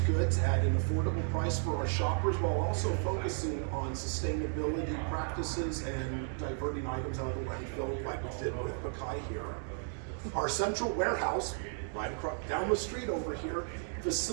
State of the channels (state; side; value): silent; left; 55 dB below the other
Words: goods at an affordable price for our shoppers while also focusing on sustainability practices and diverting items out of the landfill like we did with Bakai here. Our central warehouse right across down the street over here,